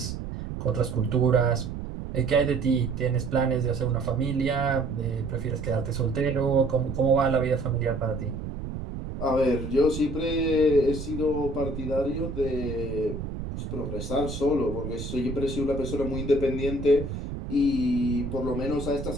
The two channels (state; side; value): noise; right; rumble, 7 dB below the sound